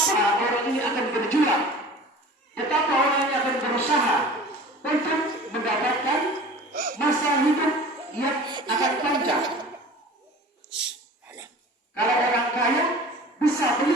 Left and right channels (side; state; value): both; normal; correlation 0.41